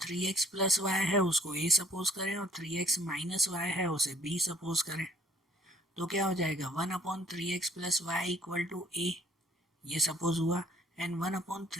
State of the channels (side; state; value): both; normal; correlation 0.59